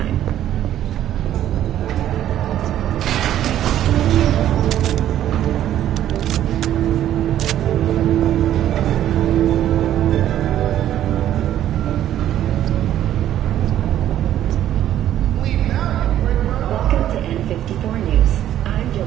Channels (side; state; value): left; quieter; 11.8 dB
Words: Welcome to N54 News. I'm